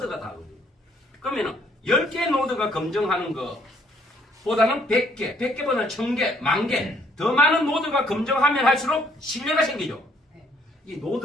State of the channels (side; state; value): both; normal; correlation 0.66